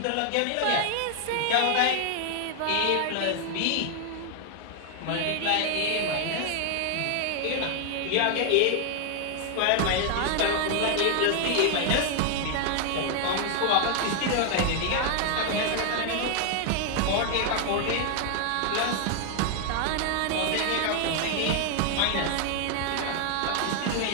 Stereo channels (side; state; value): both; different; correlation 0.00